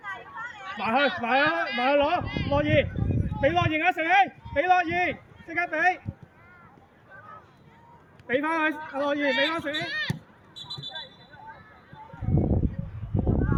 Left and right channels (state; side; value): identical; both; correlation 1.00